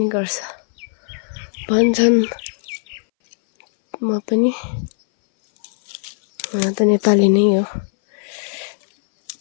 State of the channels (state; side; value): silent; right; 62 dB below the other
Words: गर्छ भन्छन् म पनि त नेपाली नै हो